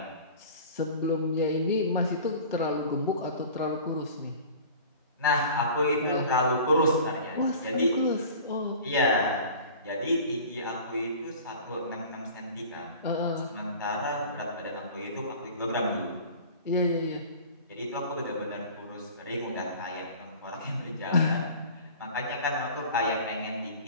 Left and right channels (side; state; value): both; inverted; correlation -0.41